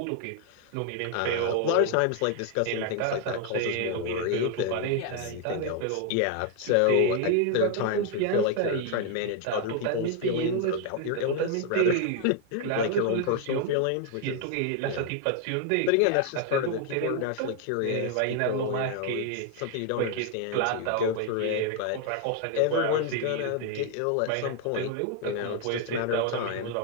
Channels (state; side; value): different; both; correlation 0.01